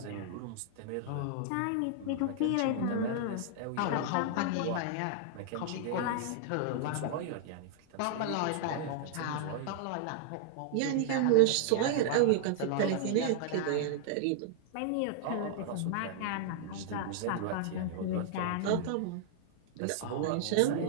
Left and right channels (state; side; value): different; both; correlation -0.01